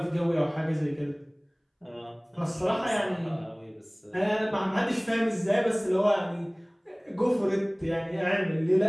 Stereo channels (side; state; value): both; identical; correlation 1.00